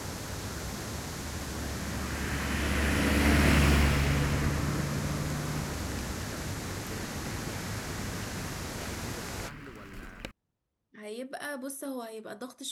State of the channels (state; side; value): identical; both; correlation 1.00